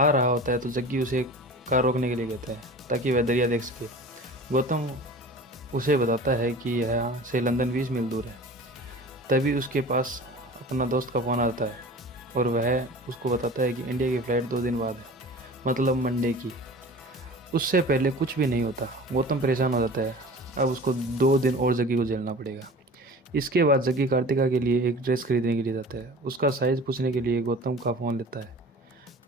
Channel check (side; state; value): both; normal; correlation 0.39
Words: रहा होता है तो जग्गी उसे कार रोकने के लिए कहता है ताकि वह दरिया देख सके। गौतम उसे बताता है कि यहाँ से लंदन 20 मील दूर है। तभी उसके पास अपना दोस्त का फ़ोन आता है और वह उसको बताता है कि इंडिया की फ़्लाइट 2 दिन बाद है, मतलब मंडे की। उससे पहले कुछ भी नहीं होता। गौतम परेशान हो जाता है। अब उसको 2 दिन और जग्गी को झेलना पड़ेगा। इसके बाद जग्गी कार्तिका के लिए एक ड्रेस खरीदने के लिए जाता है। उसका साइज़ पूछने के लिए गौतम का फ़ोन लेता है,